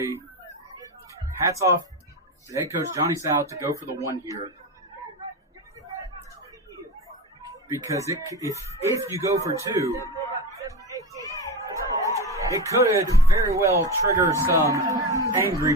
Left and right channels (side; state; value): both; normal; correlation 0.22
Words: hats off to head coach Johnny Sal to go for the 1 here. Because if you go for 2, it could very well trigger some angry